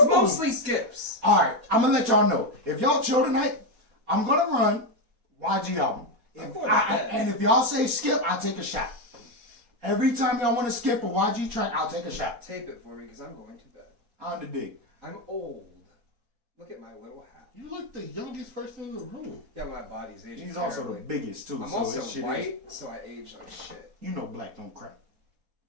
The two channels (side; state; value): left; late; 4.2 ms